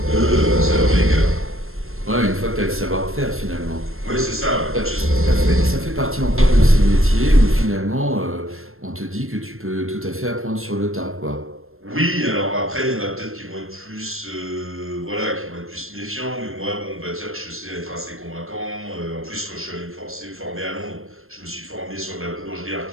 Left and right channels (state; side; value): late; left; 0.61 ms